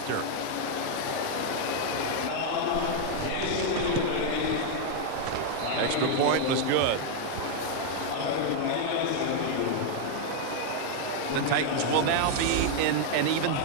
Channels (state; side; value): different; both; correlation 0.00